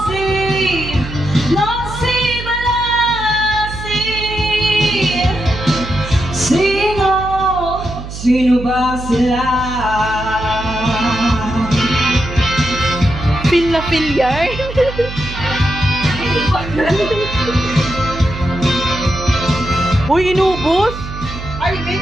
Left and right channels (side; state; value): right; noise; hum, 10 dB below the sound